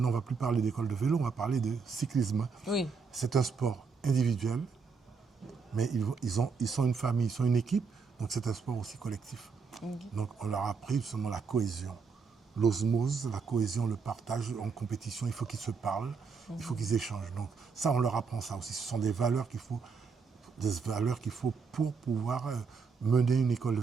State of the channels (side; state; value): left; quieter; 5.2 dB